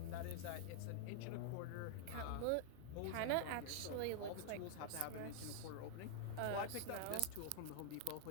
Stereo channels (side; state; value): both; different; correlation 0.00